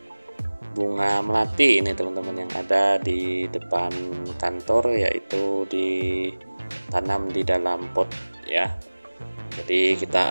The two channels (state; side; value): inverted; both; correlation -1.00